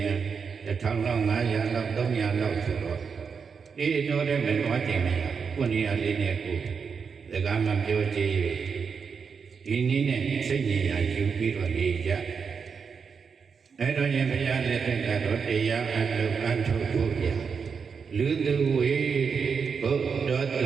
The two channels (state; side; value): quieter; left; 5.9 dB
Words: ရင်1000လောက်900လောက်300လောက်ဆိုတော့တော့တဲ့မလို့ချိန်မရခုနေရာလေးနဲ့ကိုစကားမပြောကြည့်ဒီနည်းနဲ့စိတ်ဉာဏ်ယူပြီးတော့နေကြအဲ့တော့ရင်ဘုရားလက်ထက်ကတော့တရားအလုပ်အထုတ်ဖို့ရလူသူဝေဘုဒ္ဓတုတ္